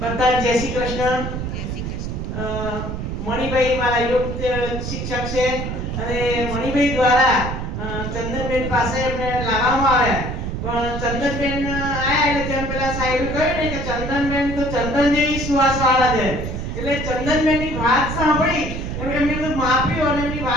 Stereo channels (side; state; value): right; noise; rumble, 4 dB below the sound